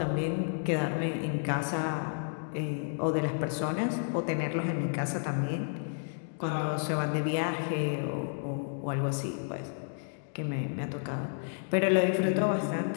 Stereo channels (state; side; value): silent; right; digital silence